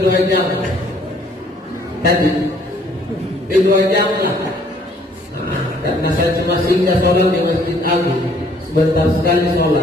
2 jam. Tadi di 2 jam lah. Karena saya cuma singgah sholat di Masjid Agung, sebentar sekali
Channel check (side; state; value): both; normal; correlation 0.61